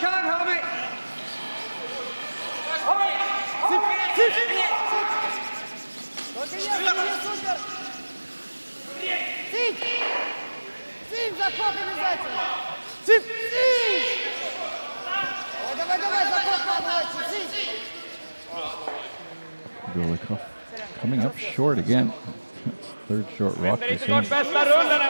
homie! Сим, заход обязательно! Сим! Давай, заход побольше! Сим! Golikov coming up short again. That's third short rock. Det är inte varit bästa rullen här,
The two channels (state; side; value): inverted; both; correlation -1.00